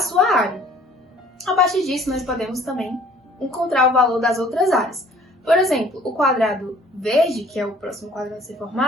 área. A partir disso, nós podemos também encontrar o valor das outras áreas. Por exemplo, o quadrado verde, que é o próximo quadrado a ser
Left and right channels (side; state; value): both; normal; correlation 0.54